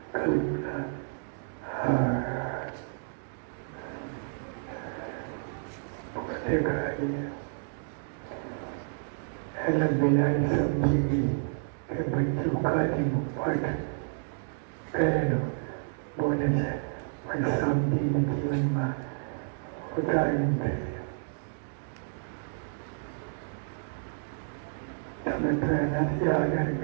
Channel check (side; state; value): left; silent; digital silence